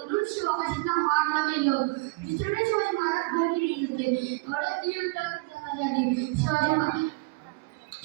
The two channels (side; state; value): left; quieter; 25.1 dB